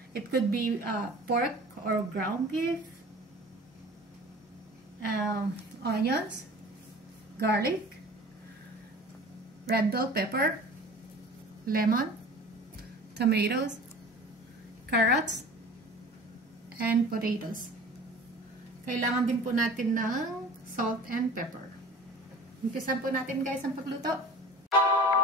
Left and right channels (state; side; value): normal; both; correlation 0.42